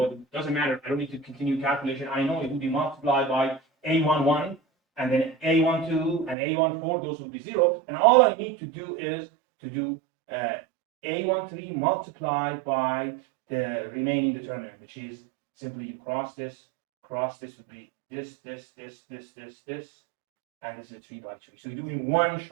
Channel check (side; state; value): left; drops out; at 6.4 s